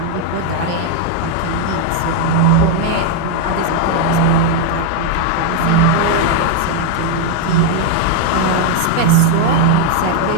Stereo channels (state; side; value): different; both; correlation 0.01